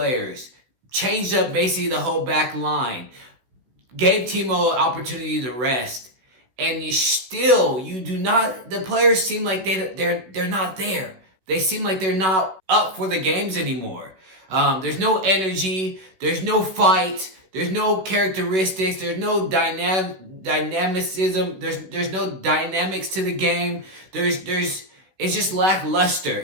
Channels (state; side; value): late; left; 16 ms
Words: changed up basically the whole back line, gave Timo an opportunity to rest, and the players seem like they're not there. They seem like they're not up for the games anymore. There's no energy, there's no fight, there's no characteristics, there's no dynamicism, there's no dynamics to the game. It's just